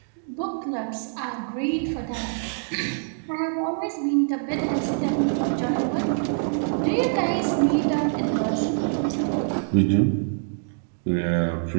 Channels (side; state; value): left; silent; digital silence